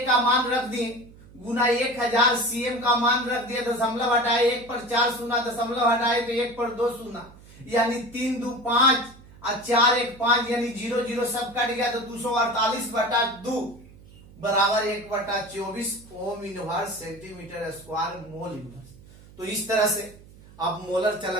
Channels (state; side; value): noise; right; hum, 22 dB below the sound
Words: का मान रख दिए गुना 1000, CM का मान रख दिए, दशमलव हटाए 1 पर 4 शून्य, दशमलव हटाए तो 1 पर 2 शून्य, यानी 3 2 5 और 4 1 5 यानी 0 0 सब कट गया। तो 248 बटा 2 बराबर 1 बटा 24 ohm inverse centimetre square mole inverse. तो इस तरह से आप मोलर